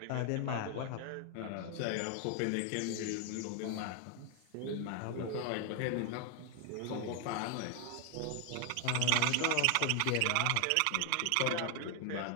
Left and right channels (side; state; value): both; different; correlation 0.00